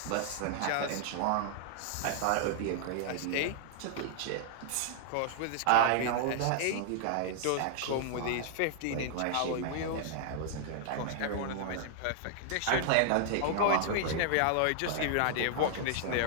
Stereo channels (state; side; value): different; both; correlation -0.01